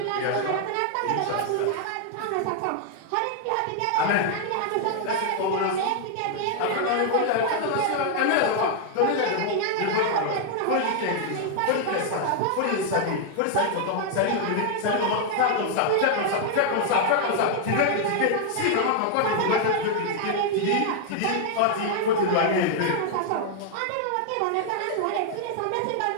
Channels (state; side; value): different; both; correlation 0.00